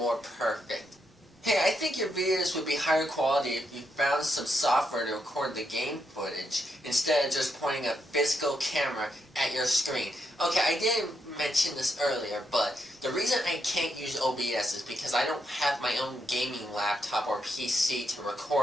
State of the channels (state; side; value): normal; both; correlation 0.80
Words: perfect. Hey, I think your videos would be higher quality if you found some software to record the game footage instead of just pointing a physical camera at your screen. Okay, I didn't mention this earlier, but the reason I can't use OBS is because I don't have my own gaming laptop or PC to